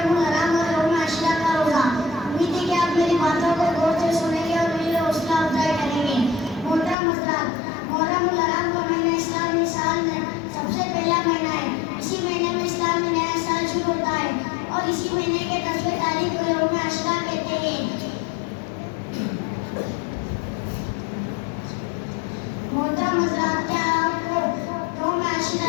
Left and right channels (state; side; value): drops out; right; at 7.0 s